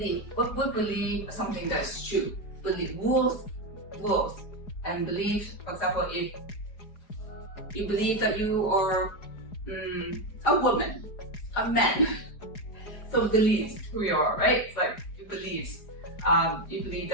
What we believe something that's true. Believe rules, and belief. For example, if you believe that you are a woman, a man, so beliefs who you are, right? It's like you believe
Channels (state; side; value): late; right; 4.9 ms